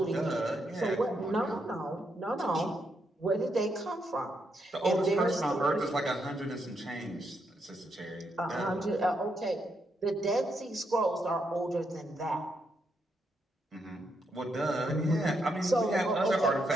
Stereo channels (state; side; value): normal; both; correlation 0.79